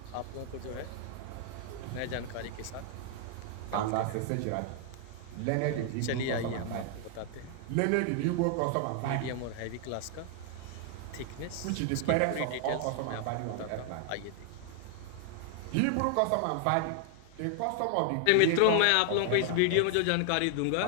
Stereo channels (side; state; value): both; different; correlation 0.00